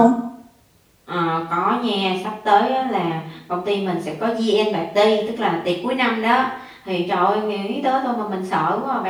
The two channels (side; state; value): both; identical; correlation 1.00